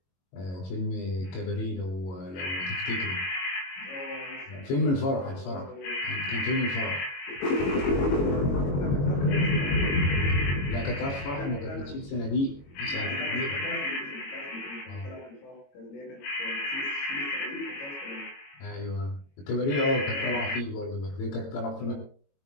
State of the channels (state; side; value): late; right; 22 ms